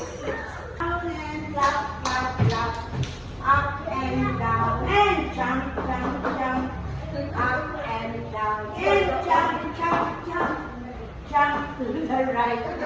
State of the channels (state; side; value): identical; both; correlation 1.00